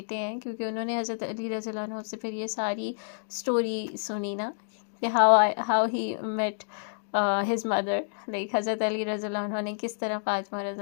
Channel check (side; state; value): right; silent; digital silence